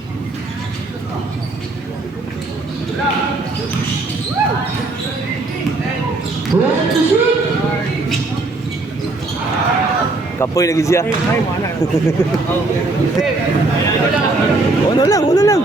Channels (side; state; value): left; quieter; 3.2 dB